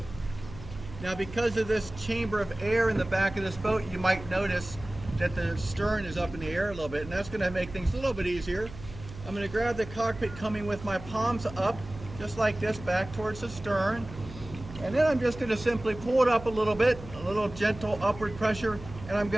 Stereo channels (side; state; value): right; noise; hum, 14 dB below the sound